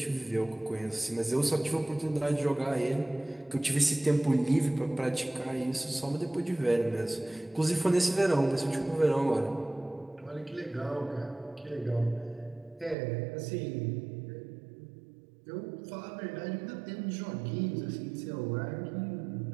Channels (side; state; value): left; drops out; at 13.0 s